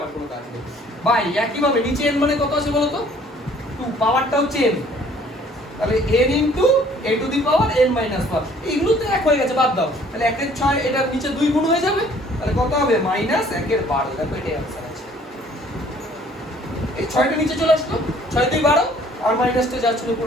কোনো কাজ নেই ভাই। একইভাবে নিচে n মানে কত আছে বলো তো? 2, পাওয়ারটা হচ্ছে n, তাহলে n into a to the power n minus 1। এগুলো তো এক হয়ে গেছে, বাদ দাও। তাহলে 1 এর 6, এটা নিচে 2 গুণ হয়ে যাবে, তাহলে কত হবে? মাইনাস 1 এর 12। দেখো এটাই आंसर আছে। এই 6টা নিচে চলে আসলো, 6 2 12 আর মাইনাসটা যাচ্ছে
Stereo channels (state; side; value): normal; both; correlation 0.57